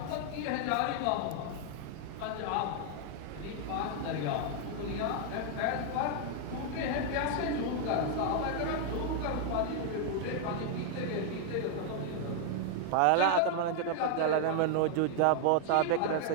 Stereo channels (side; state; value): both; different; correlation 0.00